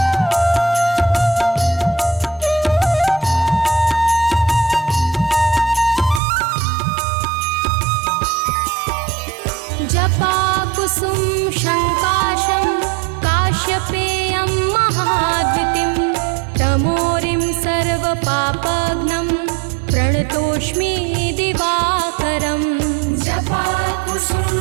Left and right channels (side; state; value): left; drops out; at 6.2 s